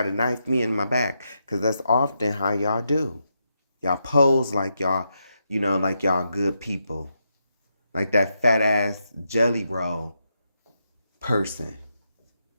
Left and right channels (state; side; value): inverted; both; correlation -0.83